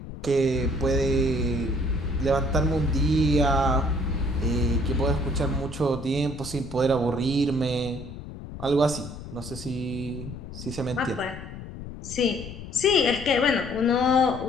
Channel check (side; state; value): left; noise; rumble, 12 dB below the sound